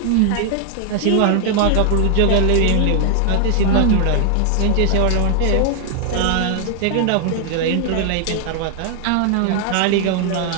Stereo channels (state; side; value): different; both; correlation 0.00